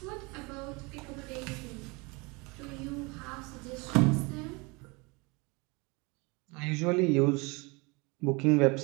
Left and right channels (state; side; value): quieter; left; 27.6 dB